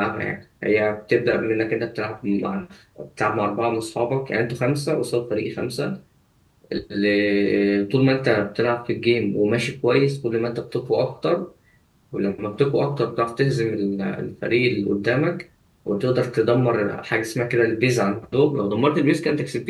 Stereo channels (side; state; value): both; identical; correlation 1.00